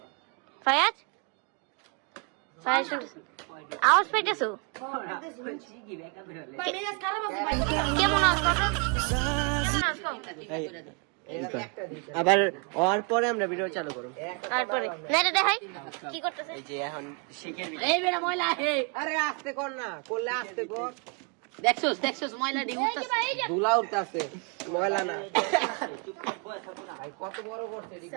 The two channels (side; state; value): left; quieter; 35.2 dB